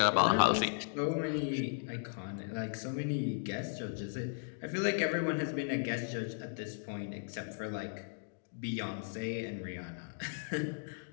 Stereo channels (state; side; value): silent; right; digital silence